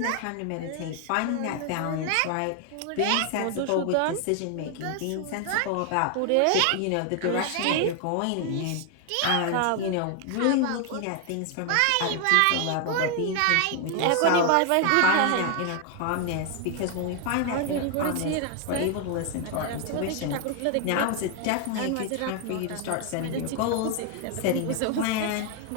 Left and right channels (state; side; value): different; both; correlation 0.00